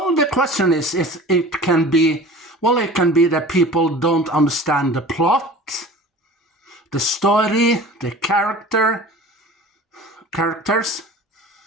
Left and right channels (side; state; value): both; normal; correlation 0.41